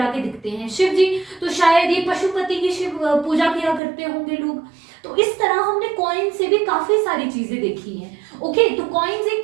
के दिखते हैं, शिव जी, तो शायद ये पशुपति की शिव पूजा किया करते होंगे लोग। तो इस तरह हमने कॉइन से भी काफी सारी चीजें देखी हैं। ओके तो कॉइन्स एक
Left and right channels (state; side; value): drops out; left; at 3.8 s